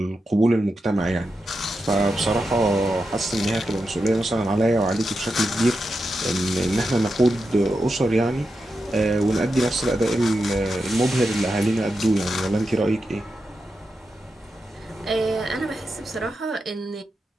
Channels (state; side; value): normal; both; correlation 0.88